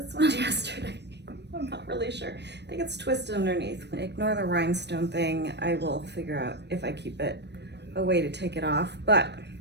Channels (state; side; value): late; left; 0.50 ms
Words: one yesterday. I'm not really sure. I think it's twisted underneath. Ignore the rhinestone thing. I will figure out if I keep it a way to take it off. But